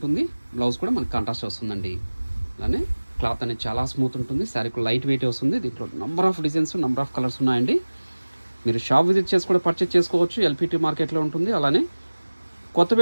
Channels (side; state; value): both; inverted; correlation -1.00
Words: బ్లౌజ్ కూడా మనకి కాంట్రాస్ట్ వస్తుందండి. అలానే క్లాత్ అనేది చాలా స్మూత్ ఉంటుంది. శారీకి లైట్ వెయిట్ వస్తుంది. దీంట్లో number of designs, number of colours ఉన్నాయండి. మీరు షాప్ విజిట్ చేసి కూడా పర్చేస్ చేసుకోవచ్చు. ఎల్పిటి మార్కెట్లో ఉంటుంది. అలానే